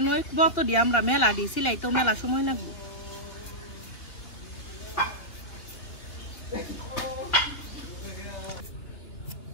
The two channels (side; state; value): right; late; 2.8 ms